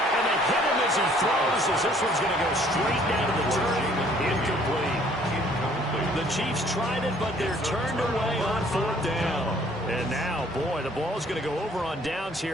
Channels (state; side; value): normal; both; correlation 0.59